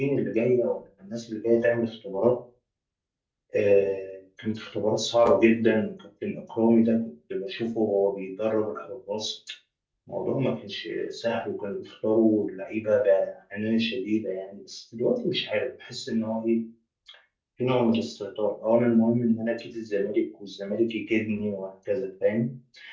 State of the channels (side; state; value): both; identical; correlation 1.00